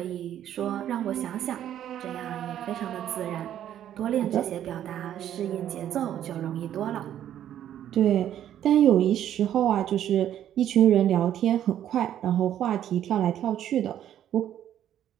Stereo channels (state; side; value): quieter; left; 10.9 dB